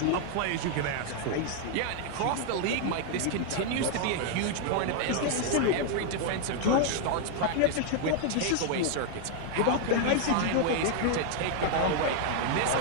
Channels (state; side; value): different; both; correlation 0.00